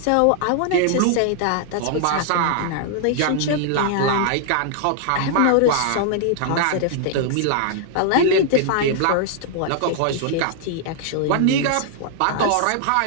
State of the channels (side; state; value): both; different; correlation -0.01